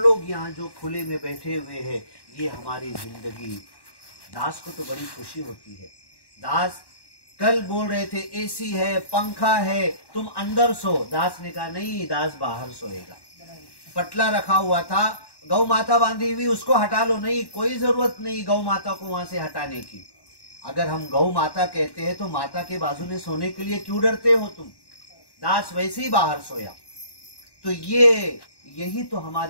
यहाँ जो खुले में बैठे हुए हैं, ये हमारी जिंदगी। दास को तो बड़ी खुशी होती है, दास कल बोल रहे थे एसी है, पंखा है, तुम अंदर सो। दास ने कहा नहीं, दास बाहर सोएगा। पटला रखा हुआ था, गौ माता बांधी हुई, उसको हटा लो। नहीं, कोई जरूरत नहीं गौ माता को वहां से हटाने की। अगर हम गौ माता कहते हैं तो माता के बाजू में सोने के लिए क्यों डरते हो तुम? दास वैसे ही बाहर सोया। तो यही तो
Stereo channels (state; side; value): late; right; 1.1 ms